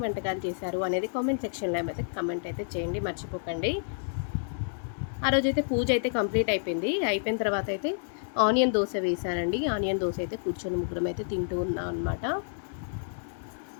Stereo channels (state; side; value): silent; right; digital silence